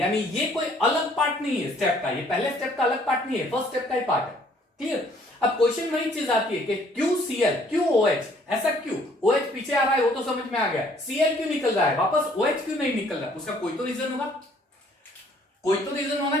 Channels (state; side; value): normal; both; correlation 0.61